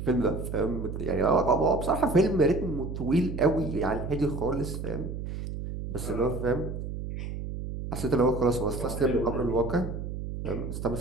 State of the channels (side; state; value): right; noise; hum, 6 dB below the sound